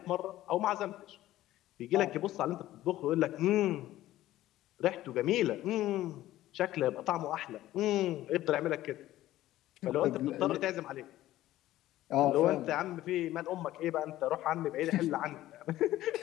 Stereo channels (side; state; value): right; quieter; 14.8 dB